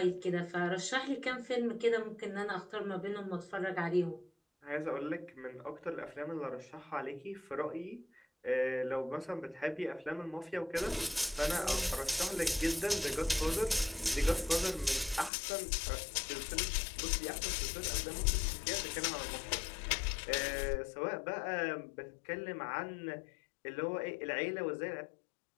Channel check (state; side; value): drops out; right; at 15.3 s